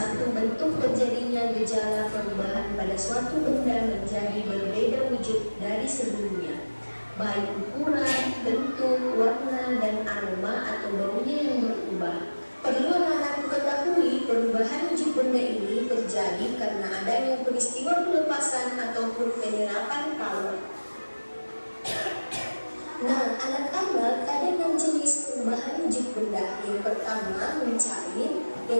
bentuk terjadinya gejala perubahan pada suatu benda menjadi berbeda wujud dari sebelumnya, baik ukuran, bentuk, warna, dan aroma atau baunya yang berubah. Perlu anak-anak ketahui, perubahan wujud benda ini terjadi karena adanya peristiwa pelepasan ataupun penyerapan kalor. Nah, anak-anak, ada 6 jenis perubahan wujud benda. Yang pertama, mencair,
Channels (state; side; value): inverted; both; correlation -1.00